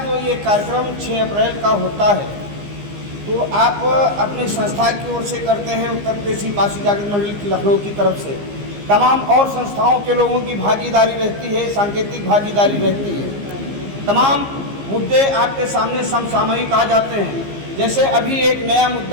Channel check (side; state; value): left; late; 15 ms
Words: ये कार्यक्रम 6 अप्रैल का होता है तो आप अपनी संस्था की ओर से करते हैं, उत्तर प्रदेशी पारसी जागृत मंडली लखनऊ की तरफ से तमाम और संस्थाओं के लोगों की भागीदारी रहती है, सांकेतिक भागीदारी रहती है। तमाम मुद्दे आपके सामने समसामयिक आ जाते हैं। जैसे अभी एक नया